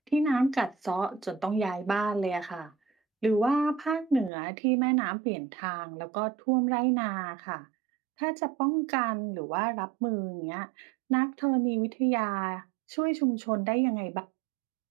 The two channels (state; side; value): drops out; left; at 4.3 s